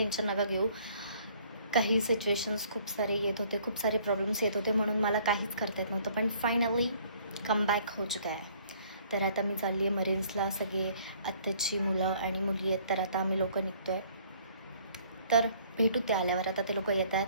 नका घेऊ. काही सिच्युएशन्स खूप सारे येत होते, खूप सारे प्रॉब्लेम्स येत होते, म्हणून मला काहीच करता येत नव्हतं. पण फायनली कमबॅक हो चुका आहे. तर आता मी चालली आहे मरीन्सला. सगळे आत्ताची मुलं आणि मुली आहेत, तर आता आम्ही लोक निघतो आहे. तर भेटू ते आल्यावर. आता ते लोक येत आहेत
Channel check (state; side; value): inverted; both; correlation -0.59